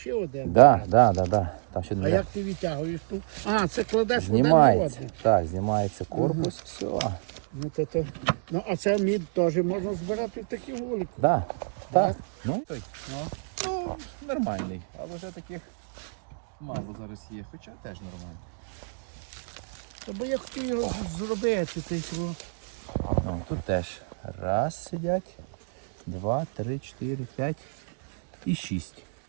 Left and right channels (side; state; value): left; silent; digital silence